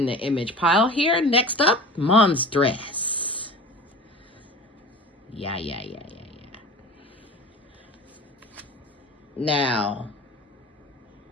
the image pile here. Next up, Monstress. Yeah. Now,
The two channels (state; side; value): normal; both; correlation 0.38